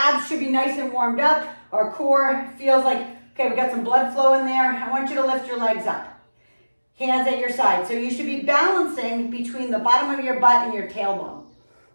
should be nice and warmed up. Our core feels like, okay, we got some blood flow in there. I want you to lift your legs up. Hands at your side. So you should be balancing between the bottom of your butt and your tailbone.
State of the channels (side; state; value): both; inverted; correlation -1.00